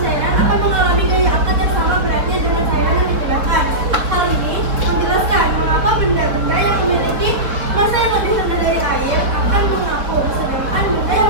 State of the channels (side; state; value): left; late; 4.3 ms